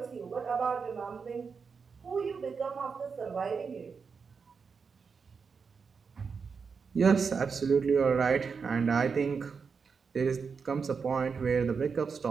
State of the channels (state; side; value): quieter; left; 5.5 dB